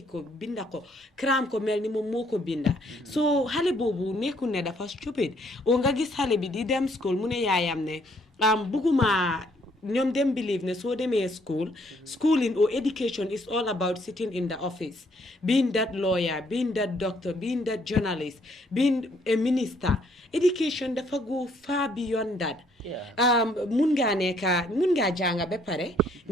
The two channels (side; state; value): both; normal; correlation 0.67